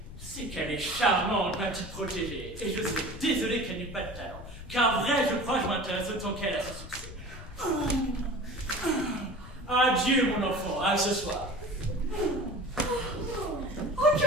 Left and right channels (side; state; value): left; noise; rumble, 13 dB below the sound